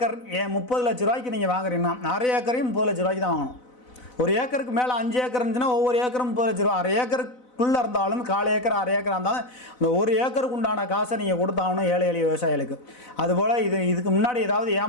30 லட்ச ரூபாய்க்கு நீங்கள் வாங்குறீங்கன்னா 1/2 ஏக்கரையும் 30 லட்ச ரூபாய்க்கு தான் வாங்கணும். 1 ஏக்கருக்கு மேலே 5 ஏக்கர் இருந்துச்சுன்னா ஒவ்வொரு ஏக்கரும் 30 லட்ச ரூபா. 1/2 ஏக்கருக்குள்ளே இருந்தாலும் 1/4 ஏக்கர் 1/2 ஏக்கர் இருந்தாலும் அந்த 1 ஏக்கருக்கு உண்டான காசை நீங்கள் கொடுத்தாகணும் ஏழை எளிய விவசாயிகளுக்கு. அதுபோல் இதுக்கு முன்னாடி ஏதாவது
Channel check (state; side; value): late; right; 4.0 ms